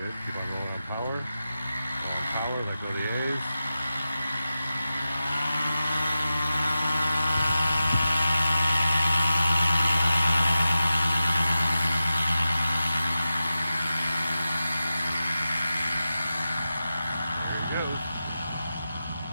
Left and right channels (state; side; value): inverted; both; correlation -0.92